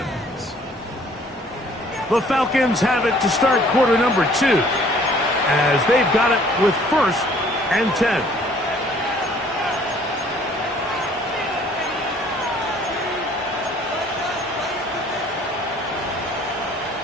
The Falcons have it to start quarter number 2 as they've got it with 1st and 10.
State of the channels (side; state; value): both; normal; correlation 0.57